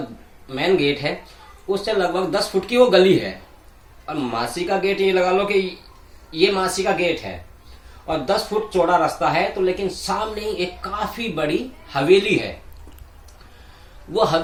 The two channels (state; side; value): identical; both; correlation 1.00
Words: मेन गेट है, उससे लगभग 10 फुट की वो गली है। और मासी का गेट, ये लगा लो कि ये मासी का गेट है और 10 फुट चौड़ा रास्ता है। तो लेकिन सामने ही एक काफी बड़ी हवेली है। वो